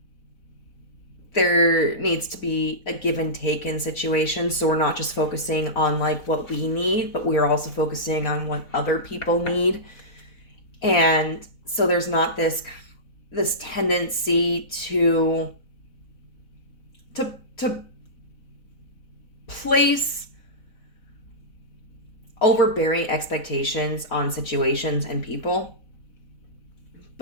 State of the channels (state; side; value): late; right; 4.0 ms